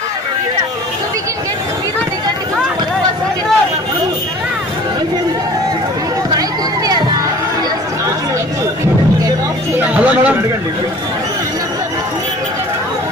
So we can get hello madam.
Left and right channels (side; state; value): both; normal; correlation 0.46